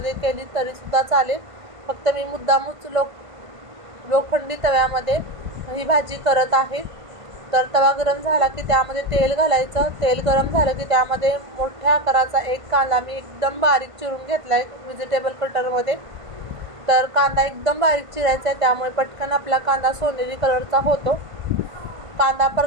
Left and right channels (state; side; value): late; left; 1.5 ms